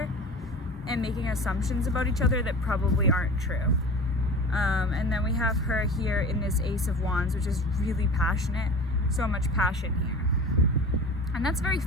and making assumptions about each other that probably aren't true. And then we have her here in this Ace of Wands, which is really passionate, so much passion here. And that's very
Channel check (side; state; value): both; normal; correlation 0.36